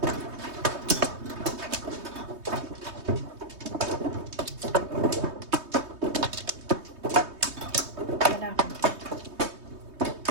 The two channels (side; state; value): left; late; 3.2 ms